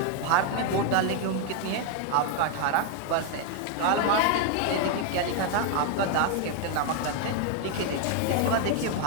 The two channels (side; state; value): both; different; correlation 0.01